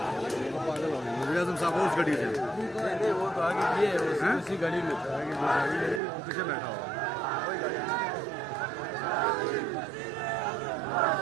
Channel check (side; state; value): left; drops out; at 6.0 s